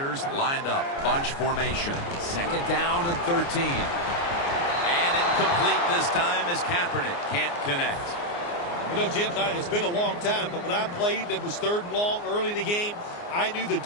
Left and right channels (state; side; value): late; right; 29 ms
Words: lined up, bunch formation. Second down and 13. And incomplete this time as Kaepernick can't connect. You know, Jim, it's been a long time, but when I played and it was third and long early in the game, I knew the